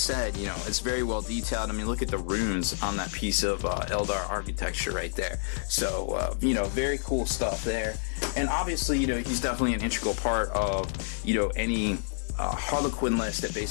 it's very well detailed. I mean, look at the runes on that piece of Eldar architecture right there. So, very cool stuff there. And obviously, he's definitely an integral part of, any Harlequin list that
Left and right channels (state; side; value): silent; right; 58 dB below the other